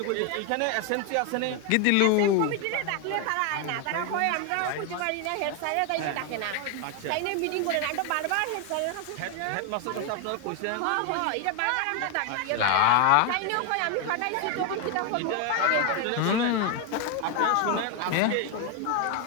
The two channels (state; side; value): different; both; correlation 0.01